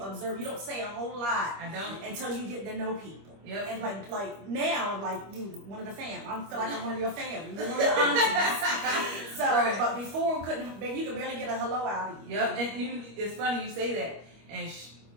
observe. You don't say a whole lot. I don't until you get to know people. Yep. And like now, like you one of the fam. I feel like I'm one of your family. You're one of the aunties. So, Right. but before you could barely get a hello out of you. Yep. And it's funny you say that. And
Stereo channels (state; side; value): late; left; 25 ms